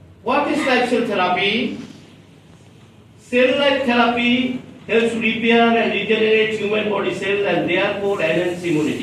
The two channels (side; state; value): both; identical; correlation 1.00